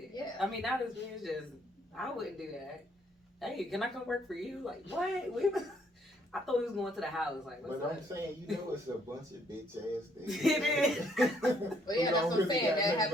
Yeah. I mean, not as weird as just I wouldn't do that. Hey, can I come work for you? Like, what? I thought we was going to the house. Like, what's But up? I'm saying, it's a bunch of bitch ass things. It is. But yeah, that's what I'm saying. That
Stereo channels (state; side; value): normal; both; correlation 0.68